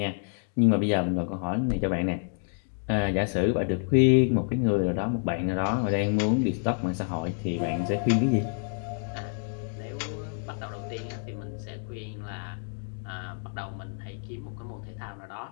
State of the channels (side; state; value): right; silent; 59 dB below the other